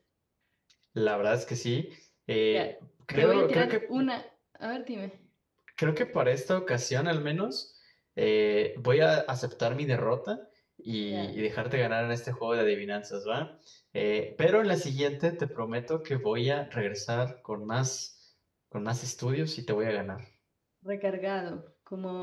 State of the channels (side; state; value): both; identical; correlation 1.00